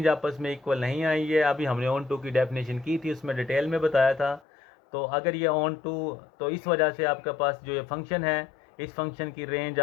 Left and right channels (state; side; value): drops out; right; at 4.4 s